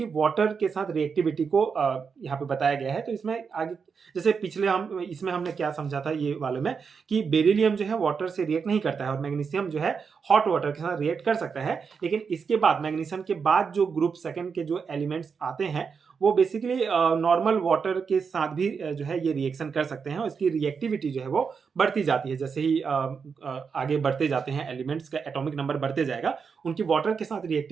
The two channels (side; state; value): left; quieter; 5.8 dB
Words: वाटर के साथ रिएक्टिविटी को यहाँ पे बताया गया है। तो इसमें आगे जैसे पिछले इसमें हमने क्या समझा था ये वाले में कि बेरिलियम जो है वाटर से रिएक्ट नहीं करता है और मैग्नीशियम जो है हॉट वाटर के साथ रिएक्ट कर सकता है, लेकिन इसके बाद मैग्नीशियम के बाद जो ग्रुप सेकेंड के जो एलिमेंट्स आते हैं वो बेसिकली नॉर्मल वाटर के साथ भी जो है ये रिएक्शन कर सकते हैं और इसकी रिएक्टिविटी जो है वो बढ़ती जाती है। जैसे ही आगे बढ़ते जाते हैं एलिमेंट्स का एटॉमिक नंबर बढ़ते जाएगा, उनकी वाटर के साथ